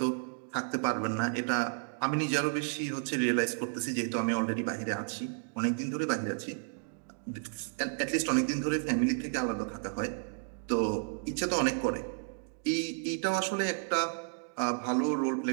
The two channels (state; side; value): silent; left; digital silence